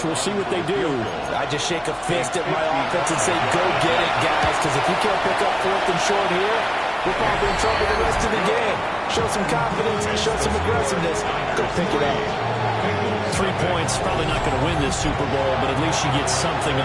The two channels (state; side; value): identical; both; correlation 1.00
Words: We'll see what they do. I just shake a fist at my offense and say, go get it, guys, because if you can't pick up 4th and short here, we're probably in trouble the rest of the game. Show some confidence, show some aggressiveness. Go pick it up. 3 points, probably not going to win this Super Bowl, but at least you get something